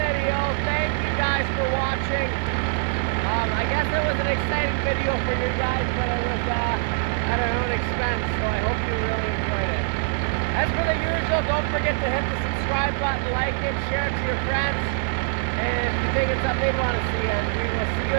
Thank you guys for watching. I guess it was an exciting video for you guys, but it was at our own expense, so I hope you really enjoyed it. As for the usual, don't forget to hit the subscribe button, like it, share it to your friends, and if you think it's something you'd want to see, and we will see you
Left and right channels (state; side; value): silent; left; 63 dB below the other